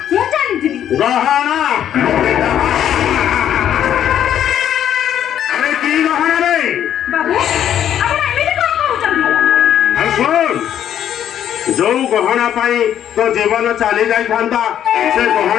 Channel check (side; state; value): right; quieter; 10.2 dB